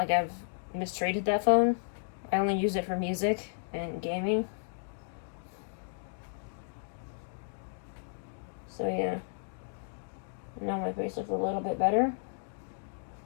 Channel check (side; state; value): right; silent; digital silence